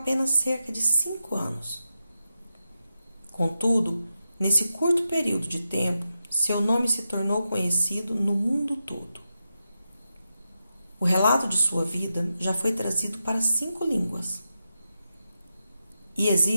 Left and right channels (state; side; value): inverted; both; correlation -0.88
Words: cerca de 5 anos. Contudo, nesse curto período de tempo, seu nome se tornou conhecido no mundo todo. O relato de sua vida já foi trazido para 5 línguas. E